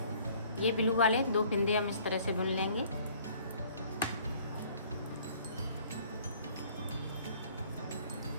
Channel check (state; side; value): inverted; both; correlation -0.57